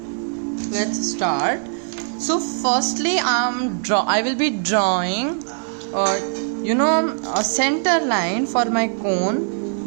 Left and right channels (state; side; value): silent; left; 65 dB below the other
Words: Let's start. So firstly I will be drawing a center line for my cone.